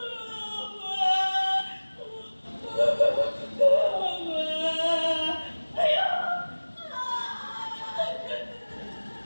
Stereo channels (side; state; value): both; inverted; correlation -1.00